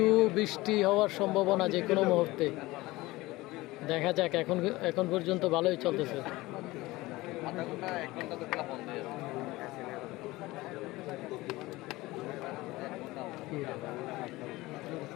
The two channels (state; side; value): quieter; right; 19.7 dB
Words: বৃষ্টি হওয়ার সম্ভাবনা যে কোনো মুহূর্তে, দেখা যাক। এখন পর্যন্ত ভালোই চলতেছে।